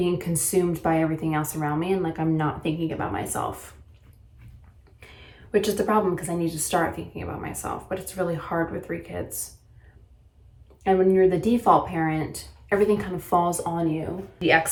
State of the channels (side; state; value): both; identical; correlation 1.00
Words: consumed by everything else around me and like I'm not thinking about myself. Which is the problem, because I need to start thinking about myself, but it's really hard with 3 kids. And when you're the default parent, everything kind of falls on you. The